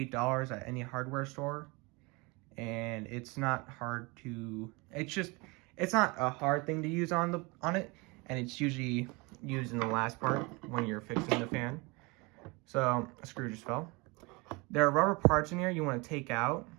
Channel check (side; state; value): left; quieter; 26.8 dB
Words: at any hardware store, and it's not hard to, it's not a hard thing to use on it, and it's usually used in the last part when you're fixing the fan. So a screw just fell. There are rubber parts in here you want to take out.